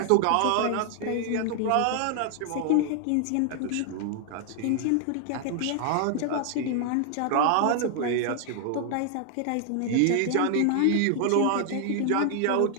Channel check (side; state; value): both; different; correlation 0.00